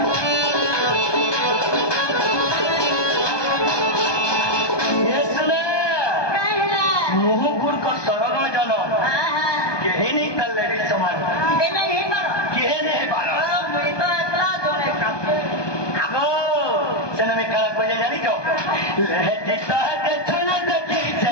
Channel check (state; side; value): late; right; 1.2 ms